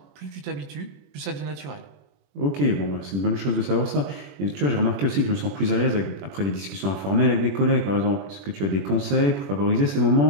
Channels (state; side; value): late; left; 21 ms